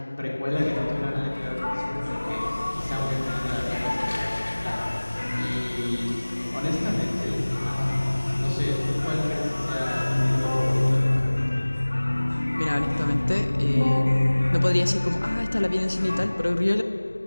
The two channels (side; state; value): both; inverted; correlation -1.00